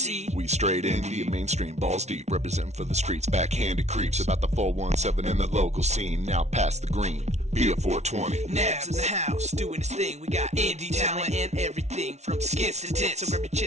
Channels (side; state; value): left; late; 0.32 ms